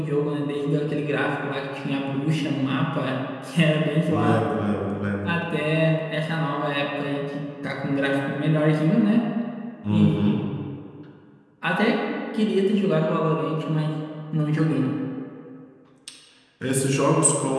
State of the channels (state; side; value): identical; both; correlation 1.00